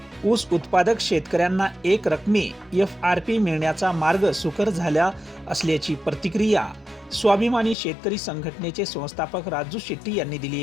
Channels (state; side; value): drops out; right; at 7.8 s